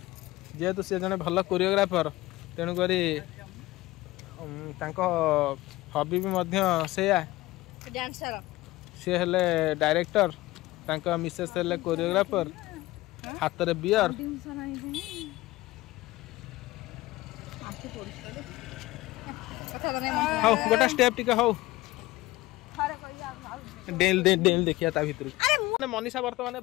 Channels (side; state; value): right; quieter; 18.7 dB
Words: जेहेतु सी जड़े भल कोरियोग्राफर तेणुक हबी भी से सी हेले डायरेक्टर मिसेस हेले कोरियोग्राफर हाथ में बियर हौ गोटा स्टेप टिके हौ डेल देखिया ता भितर मनीषा बर्तमान